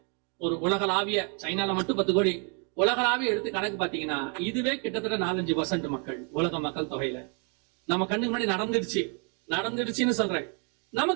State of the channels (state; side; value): quieter; left; 38.1 dB